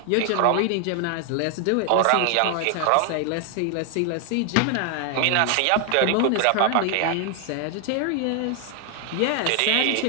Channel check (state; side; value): different; both; correlation 0.00